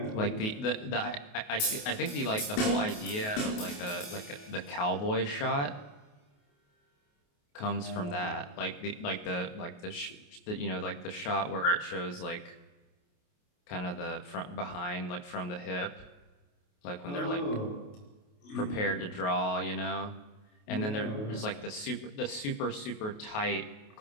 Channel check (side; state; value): right; late; 28 ms